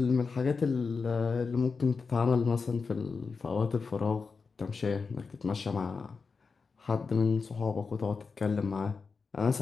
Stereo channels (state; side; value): quieter; right; 4.9 dB